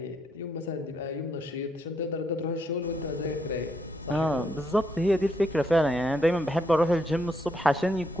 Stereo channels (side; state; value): both; normal; correlation 0.76